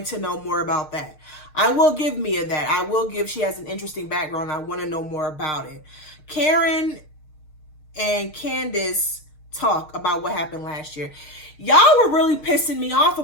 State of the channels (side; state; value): right; late; 6.5 ms